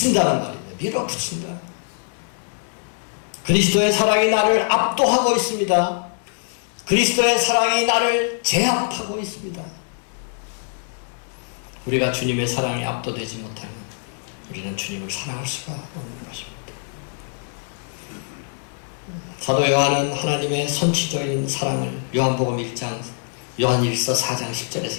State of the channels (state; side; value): silent; right; 63 dB below the other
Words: 말입니다. 밀어붙인다. 그리스도의 사랑이 나를 압도하고 있습니다. 그리스도의 사랑이 나를 제압하고 있습니다. 우리가 주님의 사랑에 압도되지 못하면 우리는 주님을 사랑할 수가 없는 것입니다. 사도 요한은 하나님의 선취적인 사랑을 요한복음 1장, 요한일서 4장